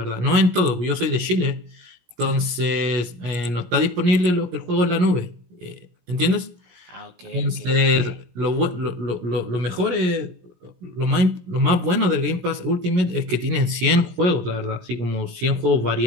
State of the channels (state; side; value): late; left; 17 ms